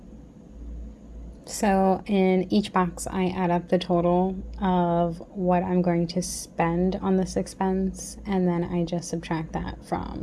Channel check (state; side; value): identical; both; correlation 1.00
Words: So in each box, I add up the total of what I'm going to spend on this expense, and then I just subtract that